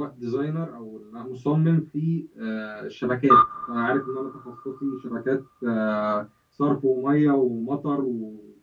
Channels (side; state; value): both; identical; correlation 1.00